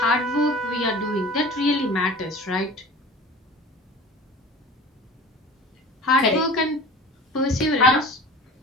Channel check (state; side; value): normal; both; correlation 0.39